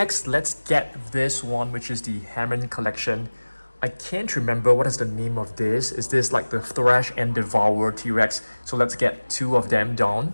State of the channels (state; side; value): inverted; both; correlation -1.00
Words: let's get this one, which is the Hammond collection. I can't remember what is the name of this. Is this like the Thrash and Devour T-Rex? So let's get two of them down.